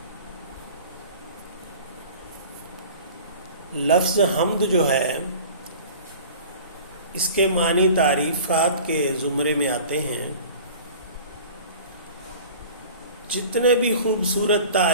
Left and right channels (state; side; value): inverted; both; correlation -0.42